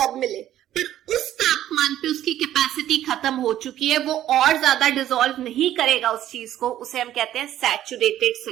मिले, पर उस तापमान पे उसकी कैपेसिटी खत्म हो चुकी है, वो और ज्यादा डिसॉल्व नहीं करेगा उस चीज को, उसे हम कहते हैं सैचुरेटेड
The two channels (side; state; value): left; quieter; 12.4 dB